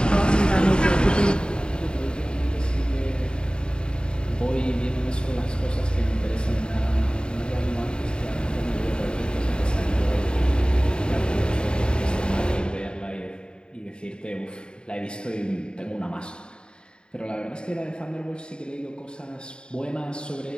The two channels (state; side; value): late; right; 0.050 ms